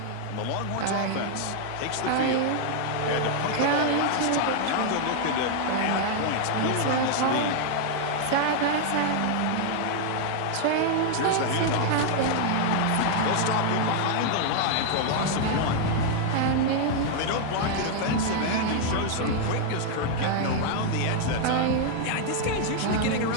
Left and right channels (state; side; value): different; both; correlation 0.00